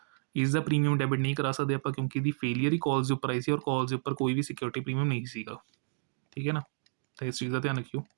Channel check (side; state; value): left; silent; digital silence